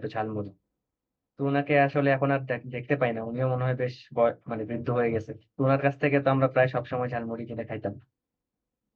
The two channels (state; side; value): identical; both; correlation 1.00